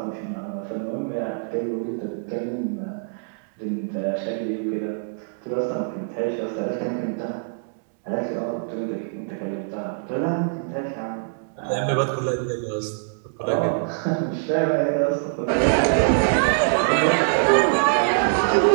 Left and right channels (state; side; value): silent; left; 63 dB below the other